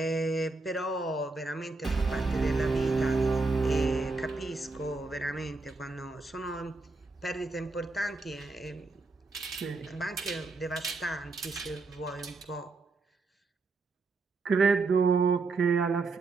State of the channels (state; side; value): quieter; left; 3.7 dB